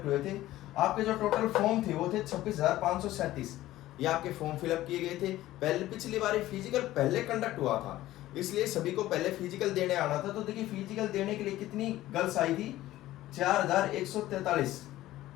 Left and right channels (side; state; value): right; quieter; 15.4 dB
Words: हुए थे, आपके जो टोटल फॉर्म थे वो थे 26,537, ये आपके फॉर्म फिलअप किए गए थे। पहले पिछली बार फिजिकल पहले कंडक्ट हुआ था, इसलिए सभी को पहले फिजिकल देने आना था। तो देखिए फिजिकल देने के लिए कितनी गर्ल्स आई थी, 4143,